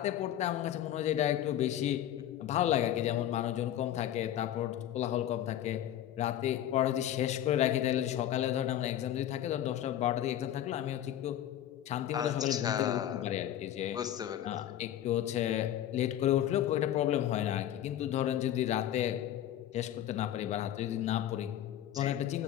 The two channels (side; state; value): right; quieter; 11.6 dB